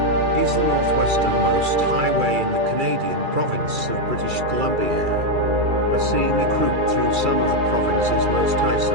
is the northwesternmost highway in the Canadian province of British Columbia. A scenic route through some of the province's most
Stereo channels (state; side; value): late; left; 2.3 ms